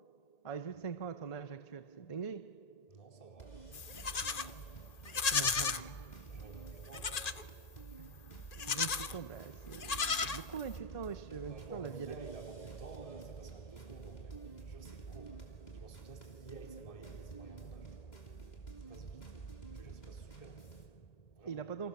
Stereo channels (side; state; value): right; late; 1.8 ms